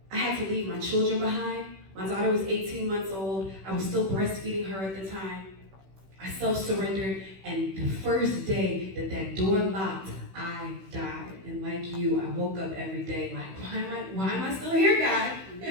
I had to leave my children behind. My daughter was 18 months old. I was still breastfeeding her at the time. I self-surrendered, and the first day that that door locked, I died. And like you, I woke up every day like, why am I still here, God?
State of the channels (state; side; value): late; left; 16 ms